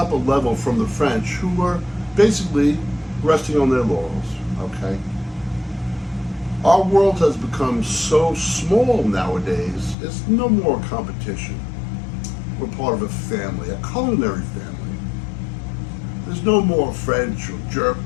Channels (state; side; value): drops out; right; at 10.0 s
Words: a level from the French, who were basically resting on their laurels, okay? Our world has become so small nowadays, it's no more competition. We're part of a family, a culinary family. There's no more French or German.